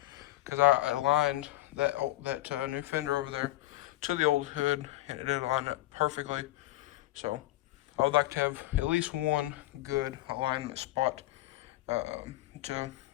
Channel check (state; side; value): quieter; right; 17.3 dB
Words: because I aligned that new fender over there to the old hood, and it did align up perfectly. So I would like to have at least one good alignment spot to